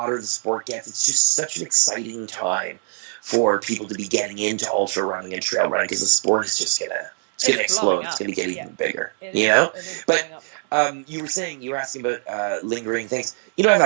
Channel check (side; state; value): left; silent; digital silence